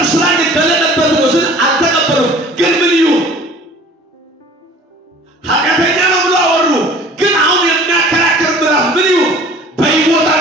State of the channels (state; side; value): normal; both; correlation 0.48